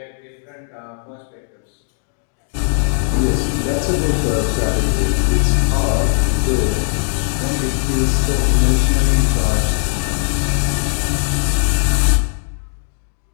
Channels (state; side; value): silent; right; digital silence